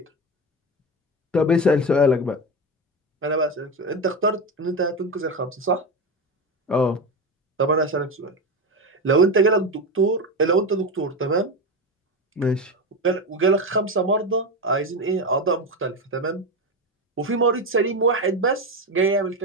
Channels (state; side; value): normal; both; correlation 0.17